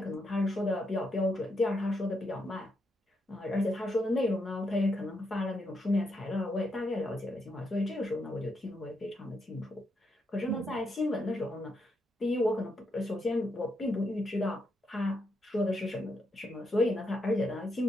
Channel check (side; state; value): both; normal; correlation 0.80